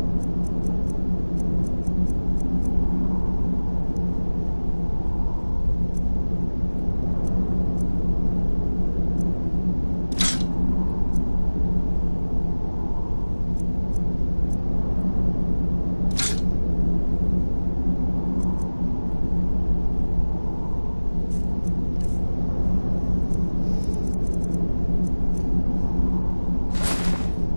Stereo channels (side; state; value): both; inverted; correlation -1.00